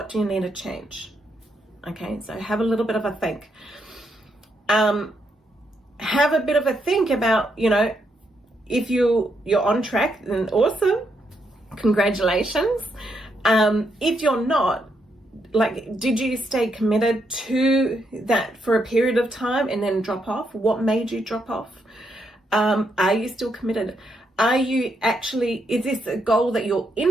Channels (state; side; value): normal; both; correlation 0.78